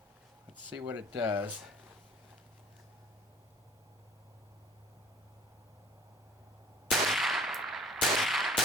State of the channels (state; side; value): normal; both; correlation 0.52